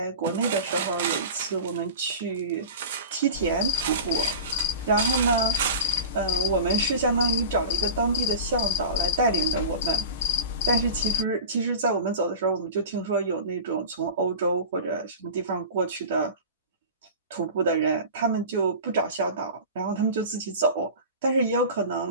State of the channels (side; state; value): both; inverted; correlation -0.32